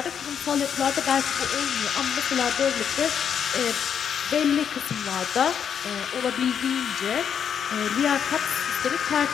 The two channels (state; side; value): quieter; right; 8.0 dB